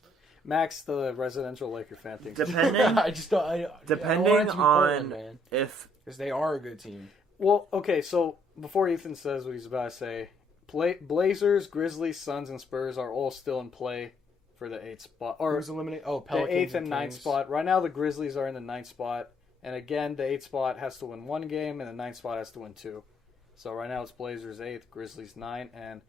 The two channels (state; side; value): normal; both; correlation 0.68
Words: Max, the residential Laker fan, thinks depending I just don't. I don't depending want it to be Portland, on man, if because they are a good team. Well, okay, so before Ethan says what he's about to say, Blazers, Grizzlies, Suns, and Spurs are all still in play for the 8th spot. Or Who's eliminated? Oh, the Pelicans 8th and 9th Kings. spot. Right now, the Grizzlies are in the 9th spot. And again, the 8th spot has to win 1 game, and the 9th spot has to win 2. So right now, it's Blazers 8th, Grizzlies 9. And